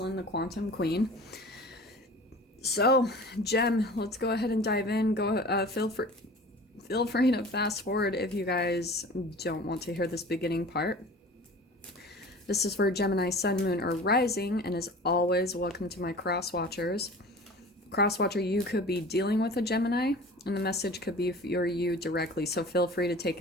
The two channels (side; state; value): both; normal; correlation 0.41